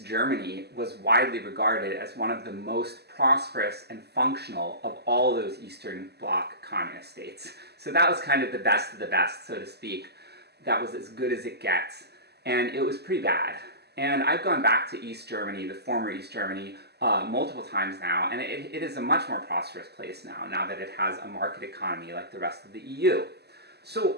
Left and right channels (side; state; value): left; late; 0.47 ms